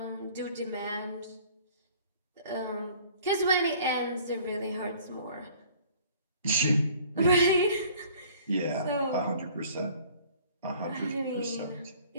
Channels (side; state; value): both; inverted; correlation -0.52